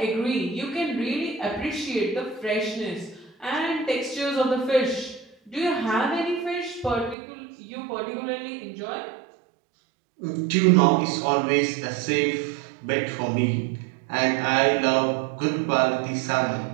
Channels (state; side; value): drops out; left; at 7.2 s